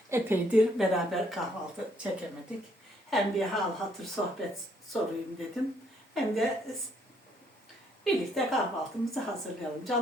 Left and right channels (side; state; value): both; normal; correlation 0.68